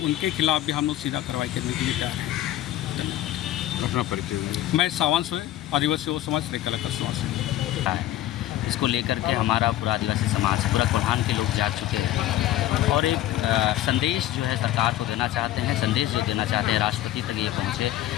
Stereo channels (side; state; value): right; quieter; 13.8 dB